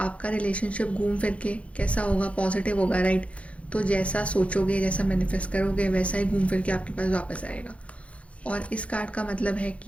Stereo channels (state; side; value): late; right; 0.063 ms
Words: रिलेशनशिप घूम फिर के कैसा होगा, पॉजिटिव होगा, राइट? तो जैसा सोचोगे, जैसा मैनिफेस्ट करोगे, वैसा ही घूम फिर के आपके पास वापस आएगा। और इस कार्ड का मतलब है